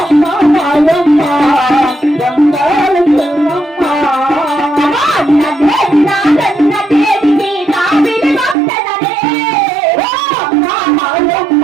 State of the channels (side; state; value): left; drops out; at 8.6 s